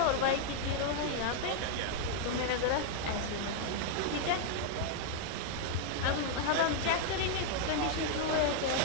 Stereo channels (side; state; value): both; different; correlation 0.00